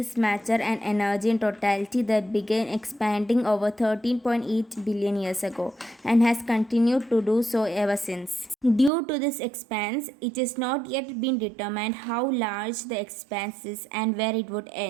matter, and energy in totality that began expanding over 13.8 billion years ago and has continued to do so ever since. Due to this expanse, it has not yet been determined how large the expanse is and where it would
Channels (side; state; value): left; drops out; at 8.9 s